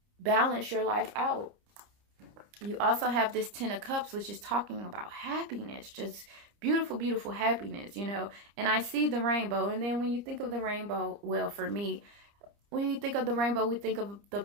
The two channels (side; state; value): left; late; 30 ms